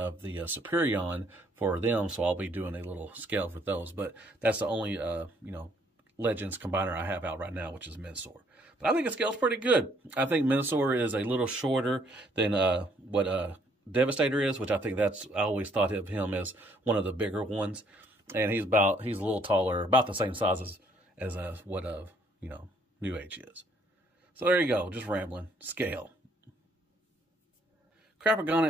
the Superion for them, so I'll be doing a little scale for those. But that's the only, Legends combiner I have out right now, which is Minosaur. But I think it scales pretty good. I think Minosaur is a little shorter than what Devastator is, which I think I always thought of him as one of the bigger ones. And he's a little taller, about the same size as what NewAge is. So there you go, just rambling. Scale.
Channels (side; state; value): both; normal; correlation 0.66